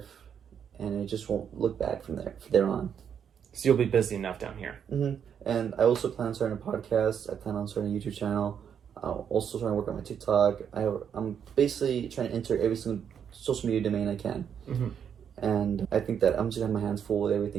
and it just won't look back from there on. So you'll be busy enough down here. And I also plan on starting a podcast. I plan on starting a YouTube channel. I'm also trying to work on my TikTok. I'm basically trying to enter every single social media domain I can. And I think that I'm just gonna have my hands full with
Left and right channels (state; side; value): quieter; left; 8.0 dB